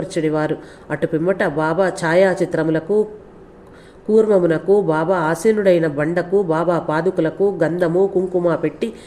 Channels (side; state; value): both; identical; correlation 1.00